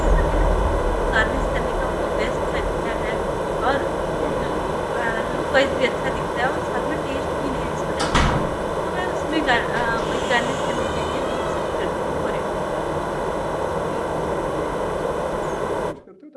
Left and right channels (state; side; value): identical; both; correlation 1.00